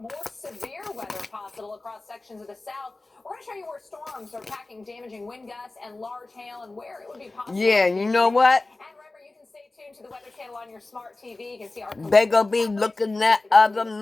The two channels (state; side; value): quieter; right; 3.2 dB